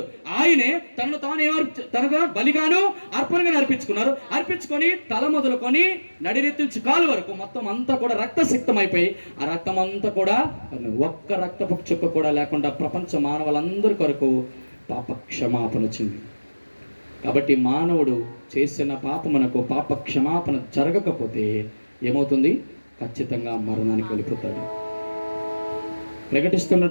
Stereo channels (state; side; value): inverted; both; correlation -1.00